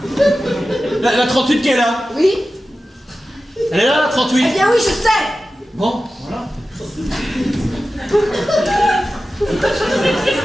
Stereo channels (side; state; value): both; normal; correlation 0.94